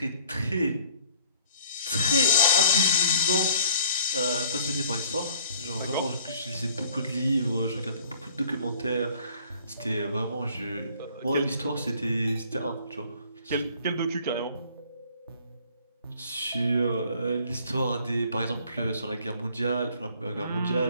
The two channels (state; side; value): inverted; both; correlation -0.57